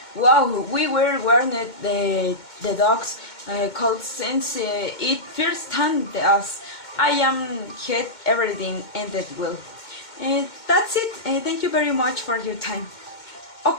Wow, we were warned the dogs cold since it first time us. I am had everything ended well. That's it. Thank you very much for your time.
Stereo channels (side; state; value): right; late; 2.2 ms